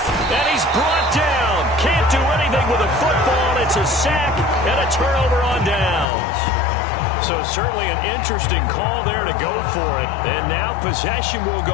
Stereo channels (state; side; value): drops out; right; at 6.1 s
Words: And he's brought down. Can't do anything with a football. It's a sack and a turnover on downs. So certainly an interesting call there to go for it. And now possession will